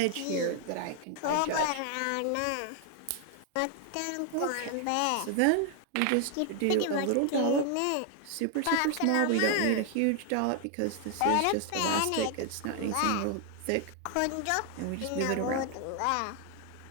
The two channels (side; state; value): both; different; correlation 0.00